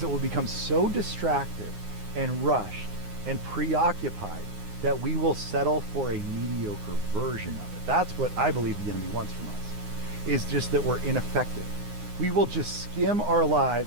we'll become so distracted and rushed and preoccupied that we will settle for a mediocre version of it. That's what I believe the enemy wants from us, is just that we're ineffective. We will just skim our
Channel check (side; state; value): left; late; 9.6 ms